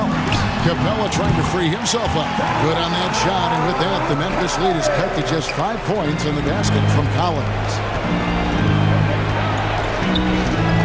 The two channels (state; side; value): identical; both; correlation 1.00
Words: Capella trying to free himself up. Good on that shot, and with that, the Memphis lead is cut to just 5 points in the basket from Collins.